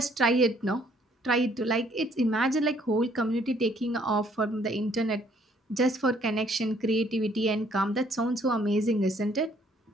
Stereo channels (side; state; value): both; normal; correlation 0.64